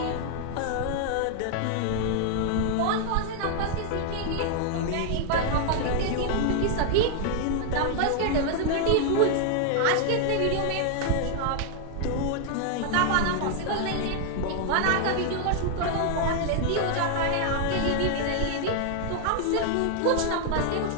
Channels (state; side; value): different; both; correlation 0.00